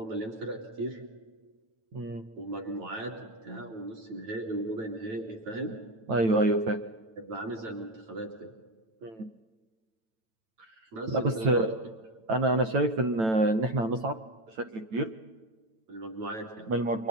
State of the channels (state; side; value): late; left; 9.0 ms